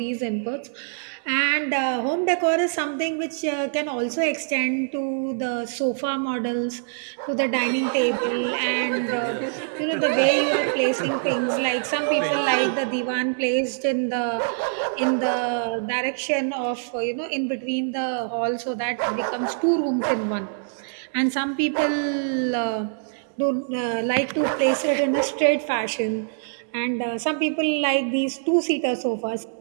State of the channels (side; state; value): left; silent; digital silence